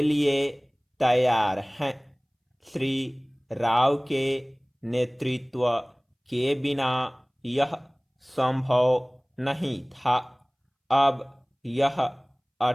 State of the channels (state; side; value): identical; both; correlation 1.00